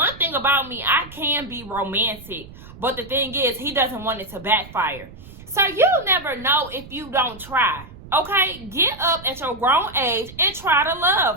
thing about me, I can be romantic. But the thing is, he doesn't want it to backfire. So you'll never know if you don't try. Okay? Get up at your grown age and try to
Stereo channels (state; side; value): noise; right; rumble, 18 dB below the sound